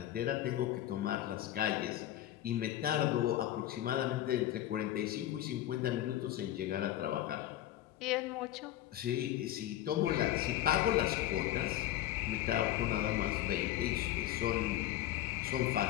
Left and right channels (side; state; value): right; quieter; 13.2 dB